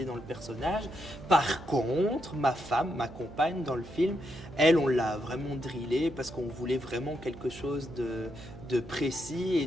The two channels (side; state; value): right; noise; hum, 15 dB below the sound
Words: dans le personnage. Par contre, ma femme, ma compagne dans le film, elle, on l'a vraiment drillée parce qu'on voulait vraiment quelque chose de précis et